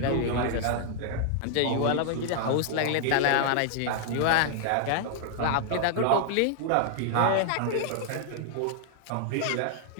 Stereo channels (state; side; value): different; both; correlation 0.00